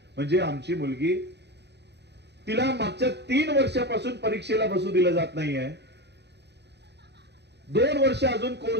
म्हणजे आमची मुलगी, तिला मागच्या 3 वर्षापासून परीक्षेला बसू दिलं जात नाहीये, 2 वर्ष अजून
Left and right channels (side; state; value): left; late; 0.49 ms